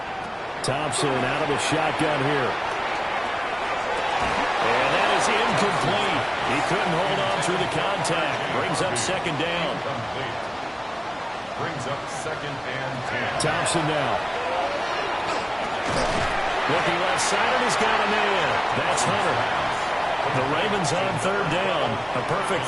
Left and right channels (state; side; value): identical; both; correlation 1.00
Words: Thompson out of the shotgun here. And that is incomplete. He couldn't hold on through the contact. Brings up 2nd down. Brings up 2nd and 10. Thompson now. Looking left side, and he's got a man. That's Hunter. The Ravens on 3rd down. A perfect